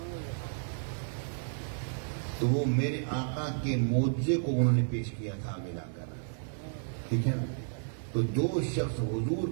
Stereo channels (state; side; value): silent; left; digital silence